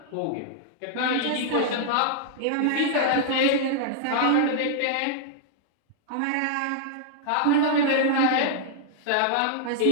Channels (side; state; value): both; different; correlation -0.01